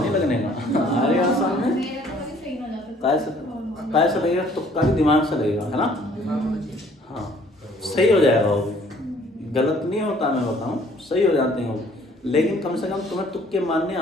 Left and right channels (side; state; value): both; normal; correlation 0.58